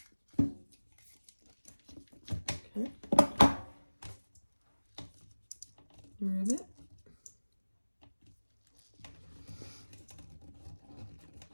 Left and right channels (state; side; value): inverted; both; correlation -1.00